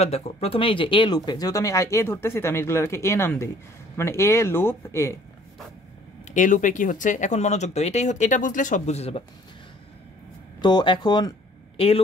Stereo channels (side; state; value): both; normal; correlation 0.56